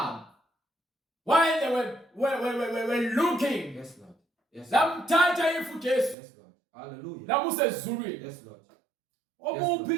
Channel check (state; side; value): drops out; left; at 6.2 s